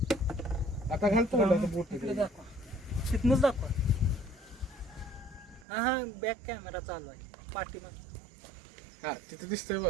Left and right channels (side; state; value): left; drops out; at 5.7 s